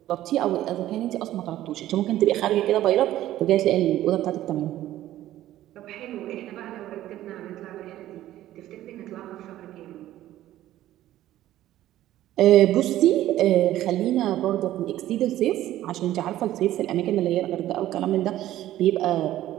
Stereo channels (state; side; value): quieter; left; 13.9 dB